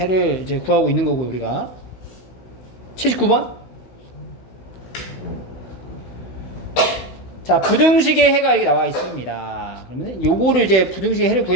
이제 구하고 있는 거고 우리가 79번. 자, 부등식의 해가 이렇게 나와 있습니다. 그러면 요거를 이제 부등식의 해를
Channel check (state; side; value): late; right; 16 ms